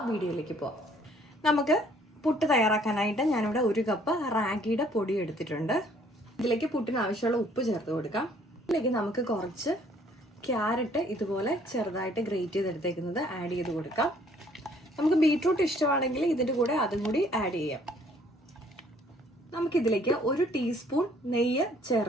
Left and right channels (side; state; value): both; normal; correlation 0.60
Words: വീഡിയോയിലേക്ക് പോവാം. നമുക്ക് പുട്ട് തയ്യാറാക്കാനായിട്ട് ഞാനിവിടെ 1 കപ്പ് റാഗിയുടെ പൊടി എടുത്തിട്ടുണ്ട്. ഇതിലേക്ക് പുട്ടിന് ആവശ്യമുള്ള ഉപ്പ് ചേർത്ത് കൊടുക്കാം. ഇതിലേക്ക് നമുക്ക് കുറച്ച് ക്യാരറ്റ് ഇതുപോലെ ചെറുതായിട്ട് ഗ്രേറ്റ് ചെയ്തെടുത്തേക്കുന്നത് ആഡ് ചെയ്ത് കൊടുക്കാം. നമുക്ക് ബീട്രൂട്ട് ഇഷ്ടമാണെങ്കിൽ ഇതിൻ്റെ കൂടെ അതും കൂടി ആഡ് ചെയ്യാം. നമുക്കിതിലേക്ക് 1 ടീസ്പൂൺ നെയ്യ്